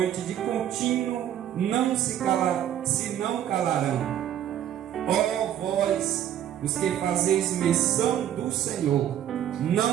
de contínuo se não calarão. Ó vós, os que fazeis menção do Senhor,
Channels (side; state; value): left; quieter; 10.8 dB